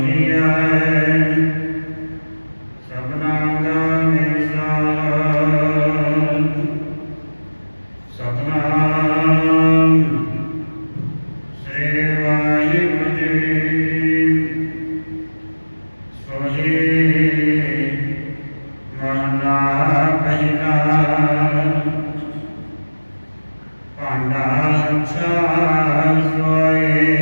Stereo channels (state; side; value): inverted; both; correlation -1.00